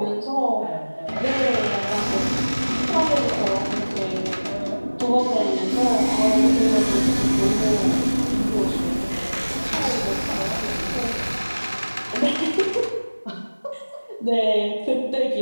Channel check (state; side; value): inverted; both; correlation -1.00